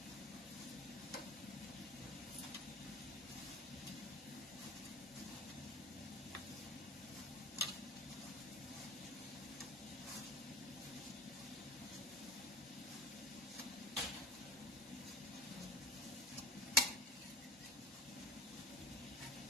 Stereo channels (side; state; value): both; normal; correlation 0.37